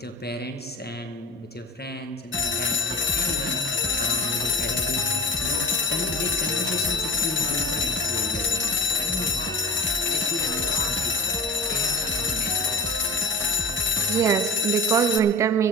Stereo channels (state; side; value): normal; both; correlation 0.34